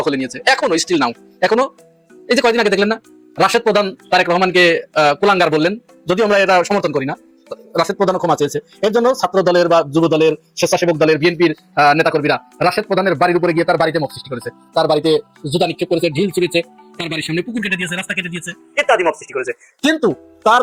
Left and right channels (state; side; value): identical; both; correlation 1.00